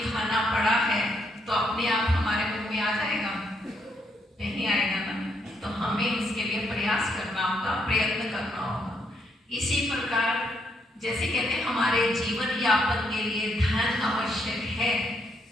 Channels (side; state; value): both; normal; correlation 0.75